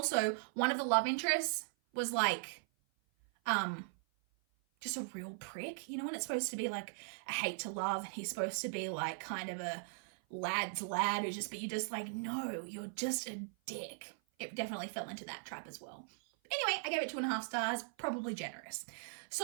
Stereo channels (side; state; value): left; silent; 52 dB below the other